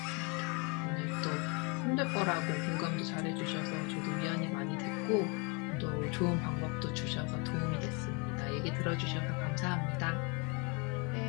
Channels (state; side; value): quieter; right; 31.5 dB